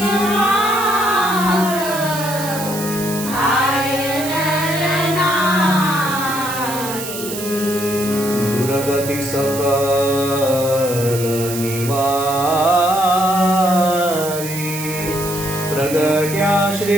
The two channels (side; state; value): right; noise; hiss, 8 dB below the sound